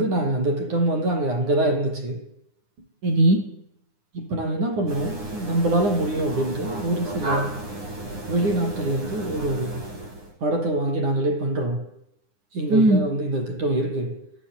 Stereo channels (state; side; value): late; left; 9.8 ms